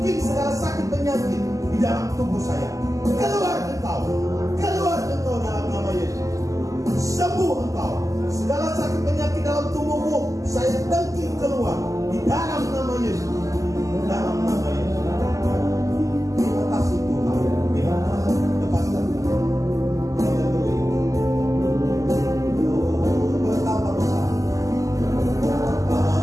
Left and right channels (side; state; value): left; late; 0.16 ms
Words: dengking segala sakit penyakit di dalam tubuh saya. Keluar engkau dalam nama Yesus. Sembuh engkau. Segala sakit penyakit dalam tubuhmu saya dengking keluar di dalam nama Yesus. Dalam nama Yesus. Terima kasih Tuhan. Lepaskan.